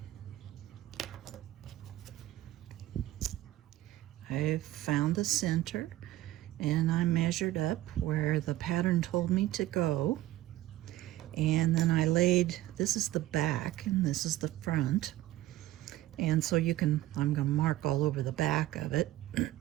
I've found the center, and I measured up where the pattern told me to go, and then I laid, this is the back and this is the front, and so you can, I'm going to mark all over the back of it.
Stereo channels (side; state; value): left; quieter; 15.4 dB